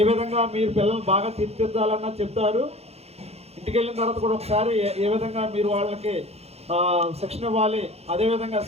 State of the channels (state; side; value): late; left; 0.30 ms